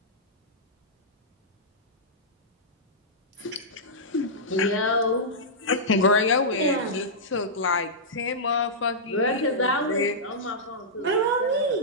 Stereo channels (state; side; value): normal; both; correlation -0.12